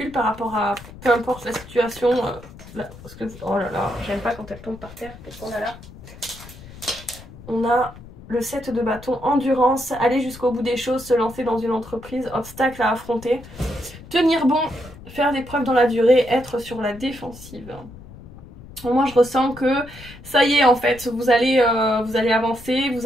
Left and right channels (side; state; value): left; noise; rumble, 18 dB below the sound